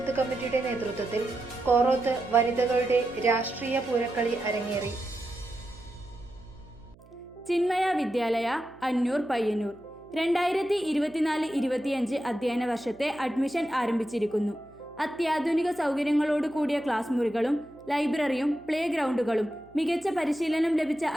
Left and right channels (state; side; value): noise; right; hum, 25 dB below the sound